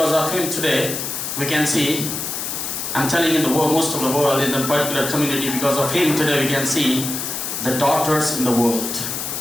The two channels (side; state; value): left; noise; hiss, 4 dB below the sound